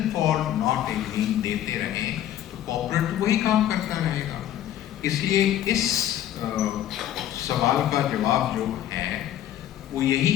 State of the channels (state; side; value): quieter; right; 11.7 dB